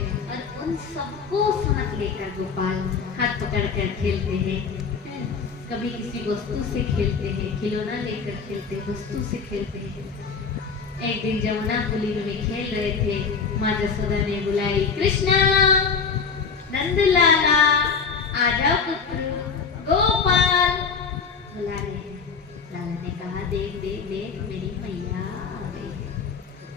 और उन सबको साथ लेकर गोपाल हाथ पकड़कर खेलते हैं। कभी किसी वस्तु से खेलते हैं, खिलौना लेकर खेलते हैं, वस्तु से खेलते हैं। एक दिन जमुना पुली में खेल रहे थे, माँ जसोदा ने बुलाई, कृष्णा, नंदलाला, आ जाओ पुत्र, गोपाल बुला रहे हैं। लाला ने कहा, देख देख देख मेरी मैया आ गई है।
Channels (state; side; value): quieter; right; 5.6 dB